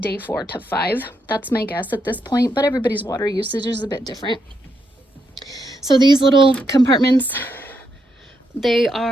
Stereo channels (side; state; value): both; normal; correlation 0.80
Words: day 4 to 5. That's my guess at this point, but everybody's water usage is a bit different. So these little compartments, they